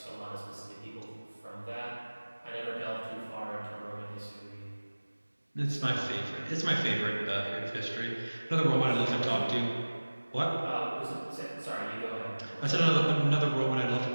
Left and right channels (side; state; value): both; inverted; correlation -1.00